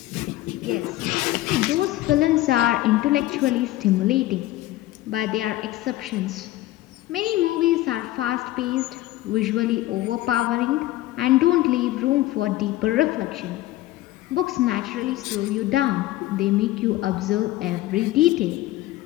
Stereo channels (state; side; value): quieter; right; 16.3 dB